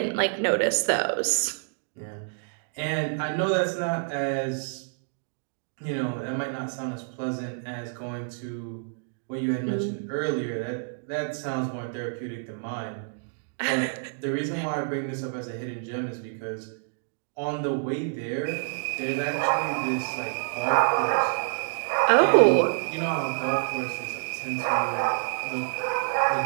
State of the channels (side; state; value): left; silent; digital silence